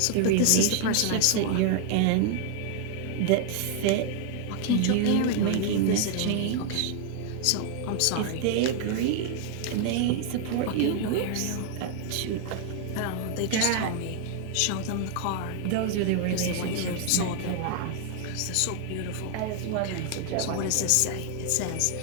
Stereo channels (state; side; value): different; both; correlation 0.00